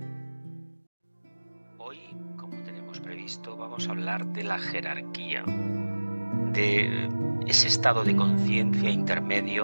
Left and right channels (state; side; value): inverted; both; correlation -1.00